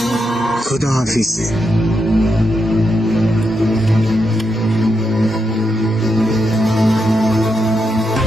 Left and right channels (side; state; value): both; normal; correlation 0.83